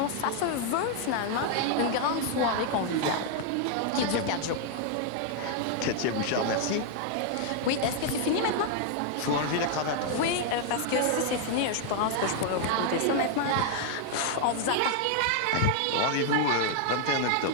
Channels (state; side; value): different; both; correlation 0.00